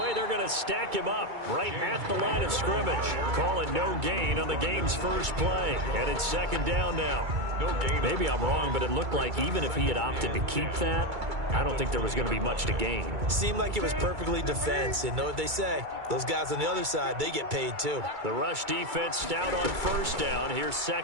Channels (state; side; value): late; left; 2.3 ms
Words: they're going to stack him up right at the line of scrimmage. Call it no gain on the game's first play. And it's second down now. No gain. Maybe I'm wrong, but it looked like even if he had opted to keep that, I don't think there was going to be much to gain. Seemed like it was perfectly defense. And know what they say? Those guys on the other side, they get paid too. The rush defense stout on first down. Here's